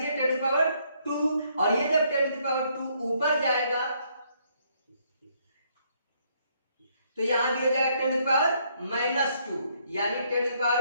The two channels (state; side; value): inverted; both; correlation -0.70